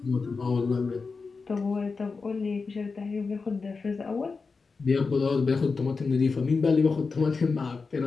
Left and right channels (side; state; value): right; quieter; 4.5 dB